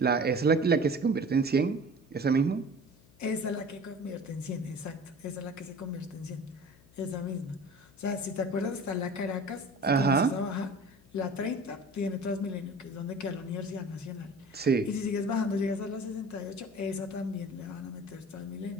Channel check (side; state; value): left; noise; hum, 27 dB below the sound